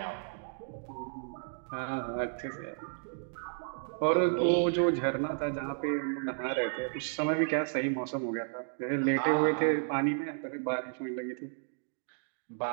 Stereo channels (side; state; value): left; silent; digital silence